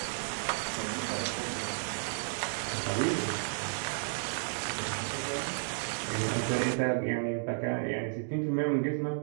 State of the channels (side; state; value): left; silent; digital silence